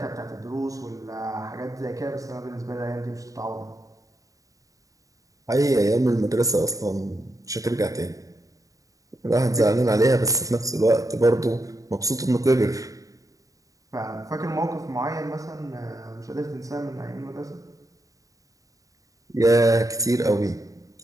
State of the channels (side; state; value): left; late; 0.16 ms